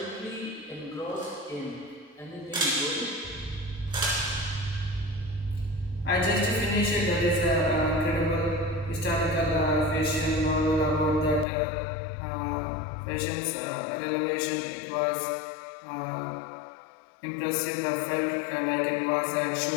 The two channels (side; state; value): right; drops out; at 11.5 s